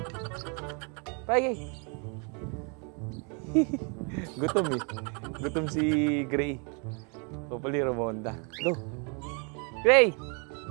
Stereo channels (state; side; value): quieter; left; 35.6 dB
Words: Fly Gray! Gutom eh. Gutom si Gray. Hopefully rumonda. Go! Gray!